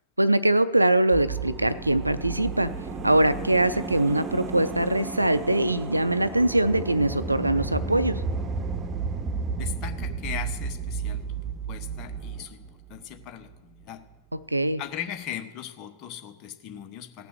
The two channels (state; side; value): inverted; both; correlation -0.77